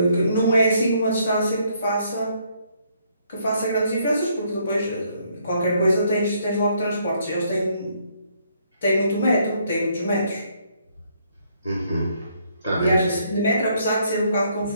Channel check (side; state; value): both; inverted; correlation -0.70